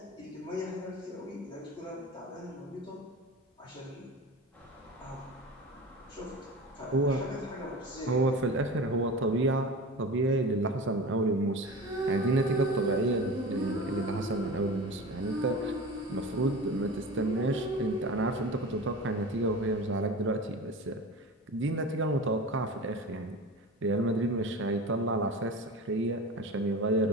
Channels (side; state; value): both; normal; correlation 0.32